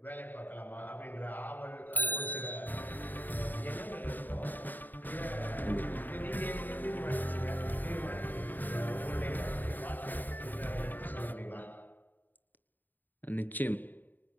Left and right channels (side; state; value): right; late; 0.088 ms